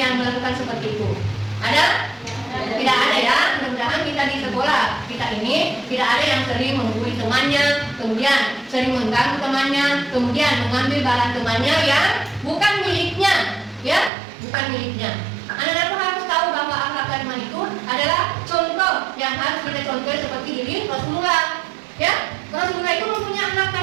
melakukan seperti itu? Ada? Tidak ada ya. Mudah-mudahan kita di sekolah kita ini tidak ada yang sering menggurui temannya, kemudian sering mengganggu temannya, kemudian mengambil barang temannya yang bukan miliknya, ya, bukan miliknya. Anak-anakku harus tahu bahwa akhlak karimah itu adalah contoh yang harus kita contoh seperti diri Rasulullah. Ya, Rasulullah itu mempunyai akhlak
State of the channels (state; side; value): drops out; left; at 14.1 s